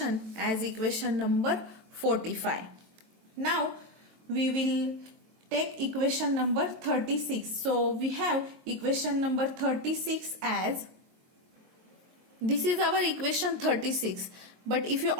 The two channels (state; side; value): late; left; 23 ms